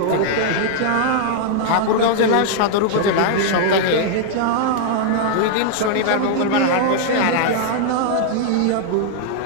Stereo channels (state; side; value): different; both; correlation 0.00